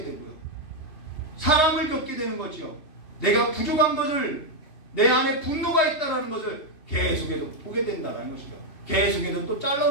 되고요. 사람을 겪게 되는 거죠. 내가 부족한 것을, 내 안에 분노가 있다는 것을 계속해서 보게 된다는 것이죠. 계속해서 또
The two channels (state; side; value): late; right; 3.2 ms